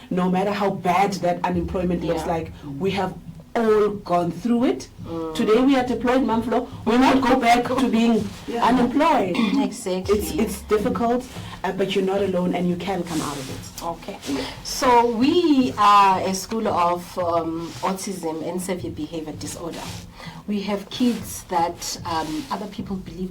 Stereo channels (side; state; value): both; identical; correlation 1.00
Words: no matter how bad that unemployment looks like, we have all gone through it. Today we are deployed, Mamflo. We'll not go back to being unemployed. Exactly. It's difficult, but you're not alone and you can come out of it. Okay. So we are a school of autism and severe behavior disorder. We have kids that other people